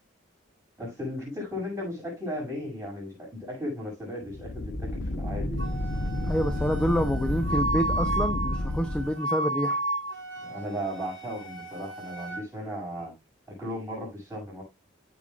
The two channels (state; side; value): normal; both; correlation 0.55